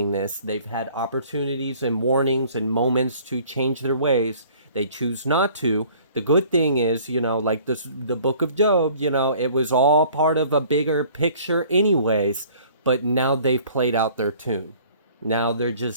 this. They've had opportunities and warnings and moments to change their ways. They choose not to. The good thing is, like the book of Job, it was all part of a bigger picture anyways, but now they've played out their tune. Now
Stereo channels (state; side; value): inverted; both; correlation -0.53